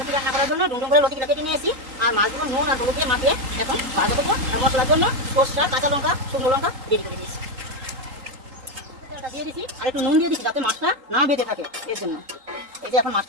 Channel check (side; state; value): left; late; 3.8 ms